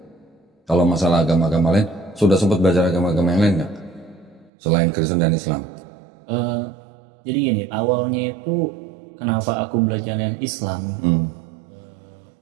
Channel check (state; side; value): drops out; left; at 4.5 s